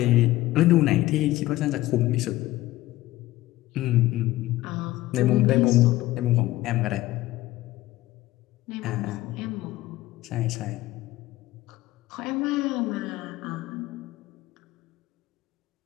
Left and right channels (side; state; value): right; quieter; 16.7 dB